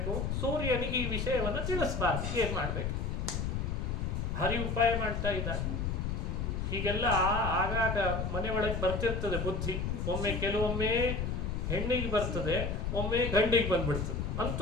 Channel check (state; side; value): noise; left; rumble, 1 dB below the sound